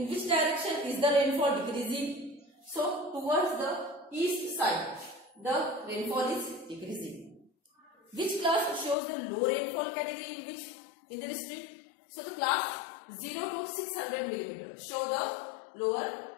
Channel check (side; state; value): right; drops out; at 9.0 s